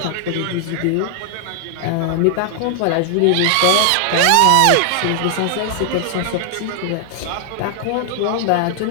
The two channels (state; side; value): different; both; correlation 0.00